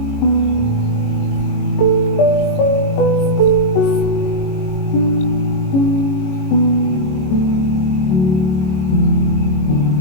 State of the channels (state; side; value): late; right; 22 ms